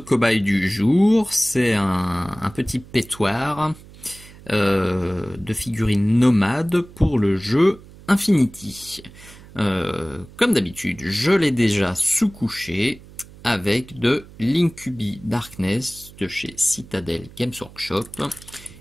du jour, c'est un petit pétoir de figurines nomades pour le jeu Infinity. Comme d'habitude, je l'ai déjà sous-couché avec de l'Incubi Darkness de chez Citadel Games Workshop.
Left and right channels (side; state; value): right; noise; hum, 21 dB below the sound